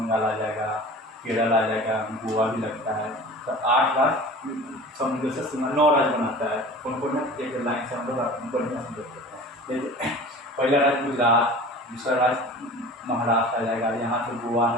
आ जाएगा, केरल आ जाएगा, गोवा भी लगता है। तो 8 राज्य समुद्र से सीमा 9 राज्य बनाता है। कौन कौन है, एक लाइन से हम लोग बढ़िया से देख सकते हैं। देखिए पहला राज्य गुजरात, दूसरा राज्य महाराष्ट्र आ जाएगा, यहाँ से गोवा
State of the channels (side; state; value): both; normal; correlation 0.40